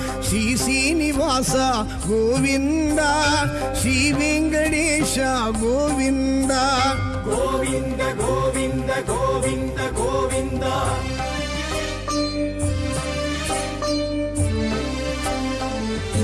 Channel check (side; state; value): both; identical; correlation 1.00